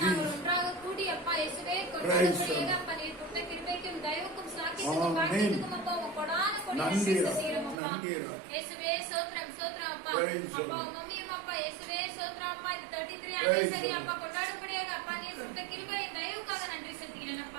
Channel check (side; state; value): left; drops out; at 7.8 s